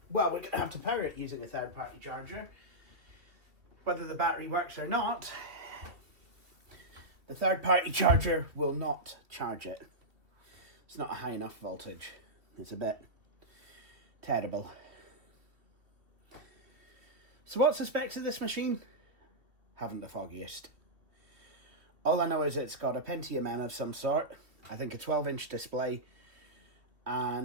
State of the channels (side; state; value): left; late; 2.4 ms